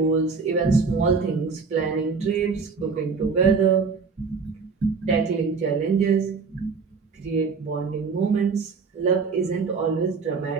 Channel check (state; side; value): quieter; left; 5.0 dB